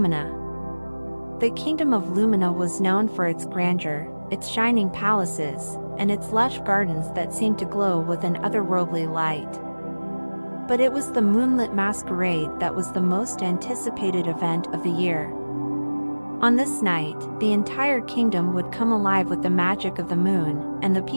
The kingdom of Lumina was known for its grandeur, its shining palaces, and its lush gardens that seemed to glow with an otherworldly light. But it was the Moonlit Masquerade that was the most anticipated event of the year. On this night, the entire kingdom would come alive with the magic of the moon, and the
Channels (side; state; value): both; inverted; correlation -1.00